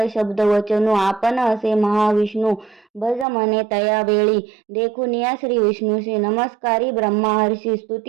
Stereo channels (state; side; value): drops out; left; at 3.2 s